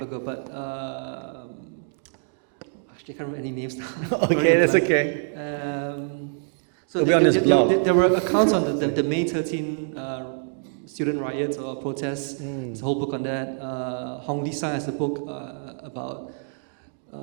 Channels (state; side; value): silent; left; digital silence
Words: ago. But actually, I can't remember any names now. Okay, that's okay. So It'll be on his blog. there were accounts on the May 13 student riots or protests. There's a whole book on that. Hong Li Sai has a book about